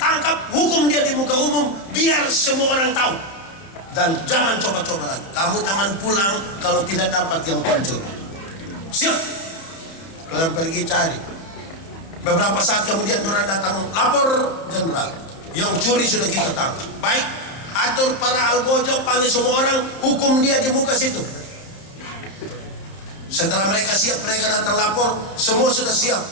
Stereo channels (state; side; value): late; right; 31 ms